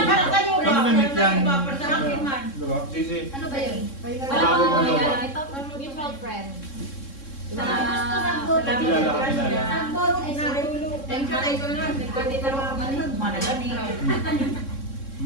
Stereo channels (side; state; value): right; late; 3.7 ms